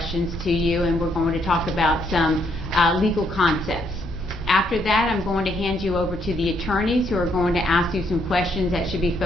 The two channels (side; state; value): both; normal; correlation 0.72